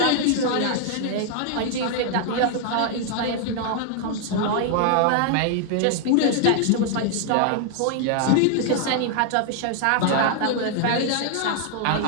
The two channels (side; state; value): both; different; correlation 0.00